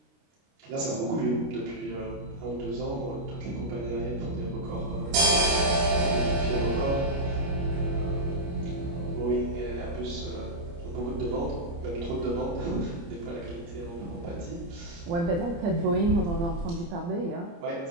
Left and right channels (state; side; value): late; left; 29 ms